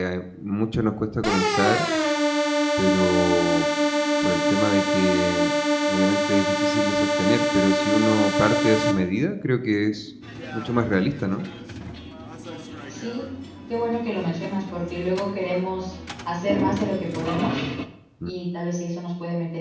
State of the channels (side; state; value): both; identical; correlation 1.00